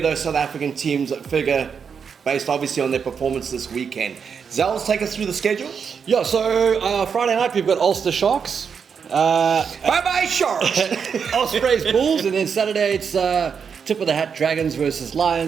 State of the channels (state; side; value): quieter; left; 6.5 dB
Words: those South African teams figure, based obviously on their performance this weekend. Zels, take us through the schedule. Yeah, so Friday night we've got Ulster Sharks. Bye-bye, Sharks! Ospreys Bulls, and then Saturday it's tip of the hat Dragons versus